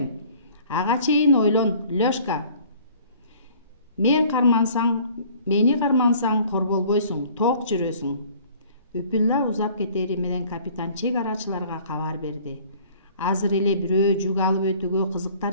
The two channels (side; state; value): both; inverted; correlation -0.52